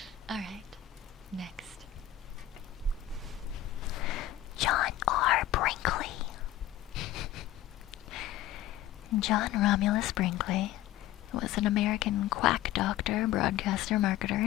Alright, next. John R. Brinkley. John Romulus Brinkley was an American quack doctor, broadcaster, marketer,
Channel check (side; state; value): right; quieter; 12.8 dB